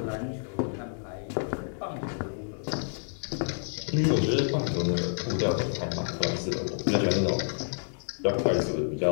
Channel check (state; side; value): silent; right; digital silence